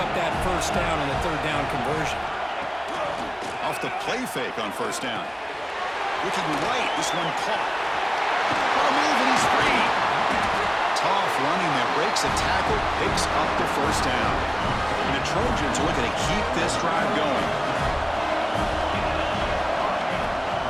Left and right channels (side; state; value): both; identical; correlation 1.00